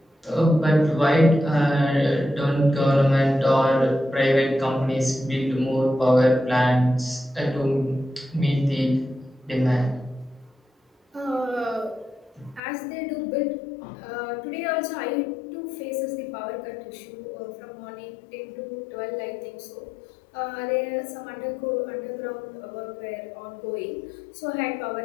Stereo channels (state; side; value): drops out; right; at 12.6 s